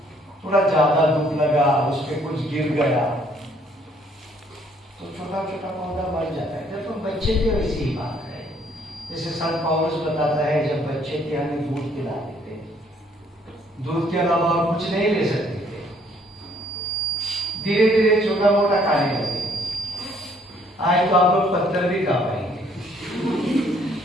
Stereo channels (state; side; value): normal; both; correlation 0.64